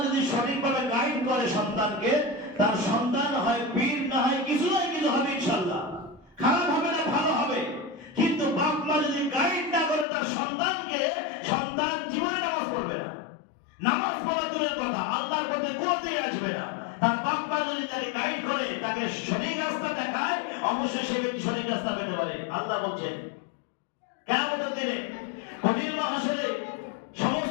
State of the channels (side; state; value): right; drops out; at 10.1 s